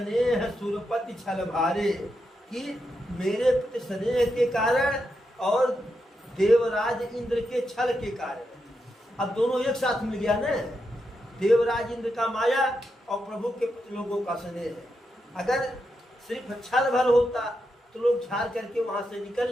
सुरपति छल भारे, कि मेरे प्रति स्नेह के कारण और देवराज इंद्र के छल के कारण। अब दोनों एक साथ मिल गया ना, देवराज इंद्र का माया और प्रभु के प्रति लोगों का स्नेह है। अगर सिर्फ छल भर होता तो लोग झाड़ करके वहां से निकल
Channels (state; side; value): normal; both; correlation 0.85